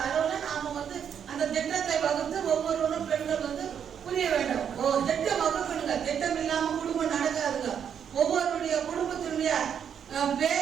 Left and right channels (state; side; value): quieter; left; 8.2 dB